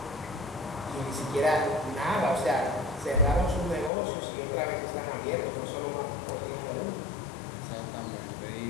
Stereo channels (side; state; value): right; drops out; at 3.9 s